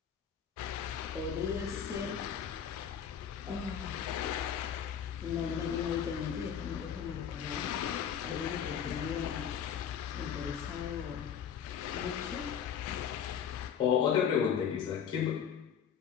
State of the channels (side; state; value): right; quieter; 8.2 dB